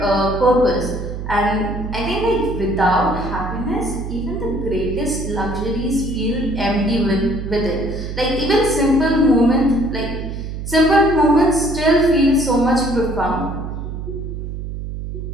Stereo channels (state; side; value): noise; right; hum, 7 dB below the sound